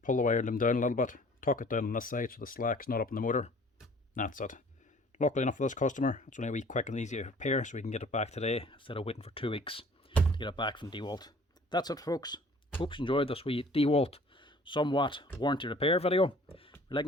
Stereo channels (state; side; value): normal; both; correlation 0.52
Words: Pull the wire loom down a little bit, tuck it down on this side so the slack's not up in the motor. That's it. Luckily enough for this customer, it's only a wee quick and easy repair, so we can get it back today instead of waiting for 2 weeks to get it back from Dewalt. That's it, folks. Hope you enjoyed this wee Dewalt somewhat warranty repair video. If you're